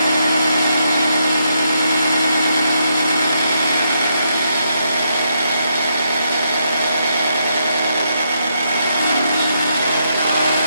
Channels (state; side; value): inverted; both; correlation -0.78